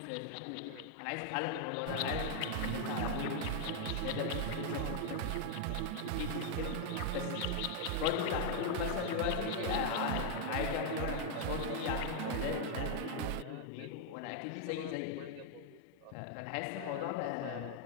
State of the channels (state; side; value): different; both; correlation 0.00